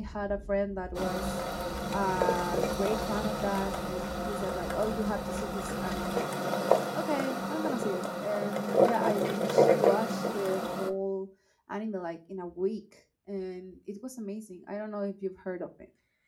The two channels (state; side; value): identical; both; correlation 1.00